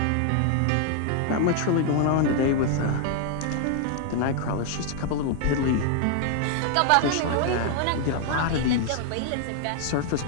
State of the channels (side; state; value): both; different; correlation 0.00